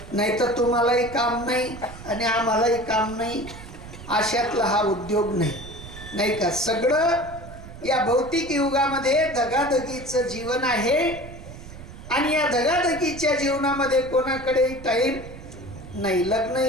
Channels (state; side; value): noise; right; rumble, 14 dB below the sound